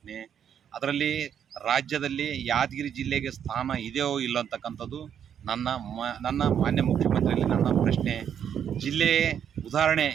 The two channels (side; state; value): left; quieter; 8.7 dB